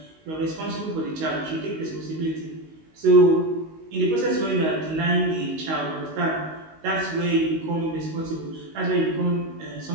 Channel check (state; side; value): late; left; 19 ms